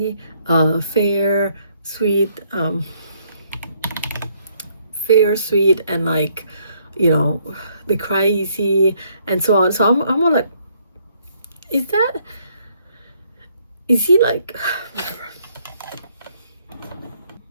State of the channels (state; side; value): inverted; both; correlation -0.68